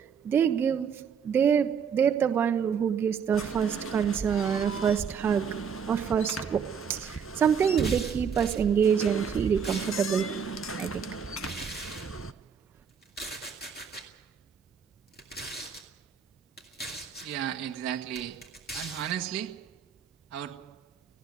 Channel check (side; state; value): left; quieter; 7.0 dB